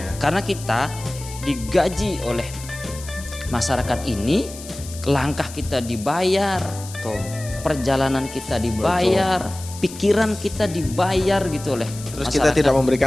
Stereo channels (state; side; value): noise; left; hiss, 14 dB below the sound